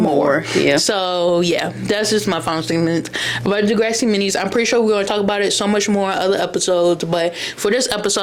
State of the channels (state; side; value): identical; both; correlation 1.00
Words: more. Yeah. So yeah, that's just my final statement about Degrassi minis. I'm pretty sure we're going to talk about it so much more in other episodes, but for this